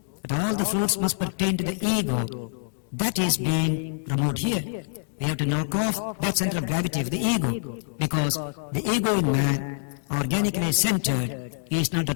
that all the fruits must pertain to the ego, that is being removed here. We have to knock off that center of gravity of the ego, because the ego in man, organically centered, is not the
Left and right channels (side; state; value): right; silent; digital silence